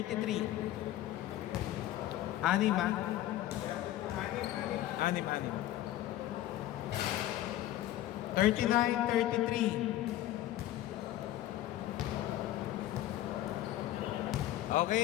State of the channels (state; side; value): quieter; right; 13.9 dB